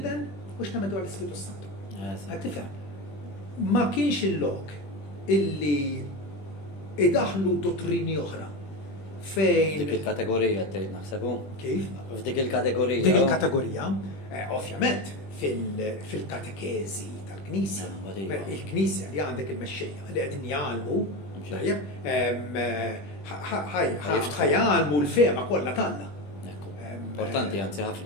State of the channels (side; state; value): right; late; 20 ms